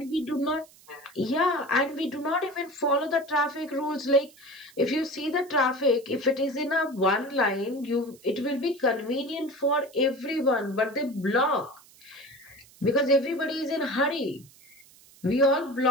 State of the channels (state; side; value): noise; right; hiss, 25 dB below the sound